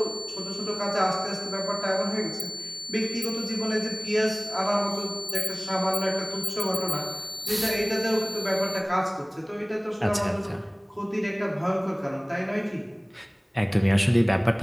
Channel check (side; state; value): both; identical; correlation 1.00